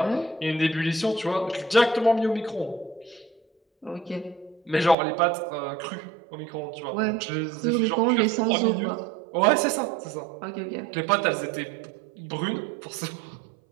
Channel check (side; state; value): left; drops out; at 5.0 s